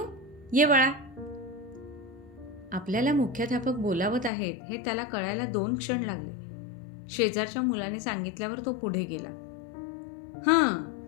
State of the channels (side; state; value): right; drops out; at 4.3 s